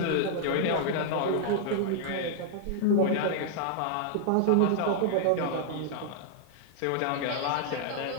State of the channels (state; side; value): different; both; correlation -0.01